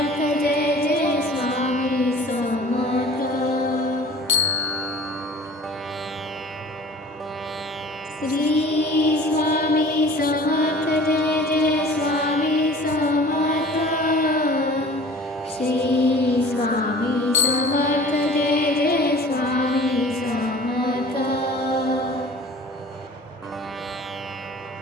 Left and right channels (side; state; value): both; normal; correlation 0.45